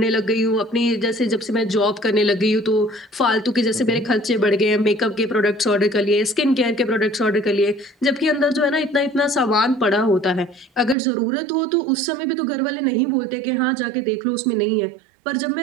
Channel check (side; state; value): left; drops out; at 11.0 s